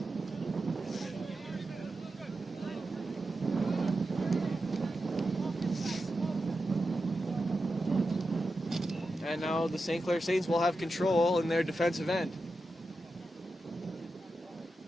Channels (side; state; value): both; normal; correlation 0.90